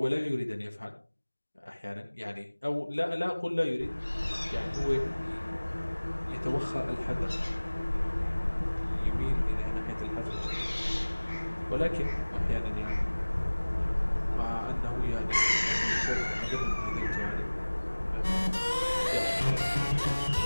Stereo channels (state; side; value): inverted; both; correlation -1.00